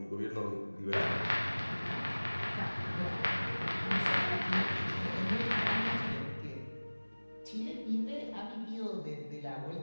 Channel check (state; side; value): inverted; both; correlation -1.00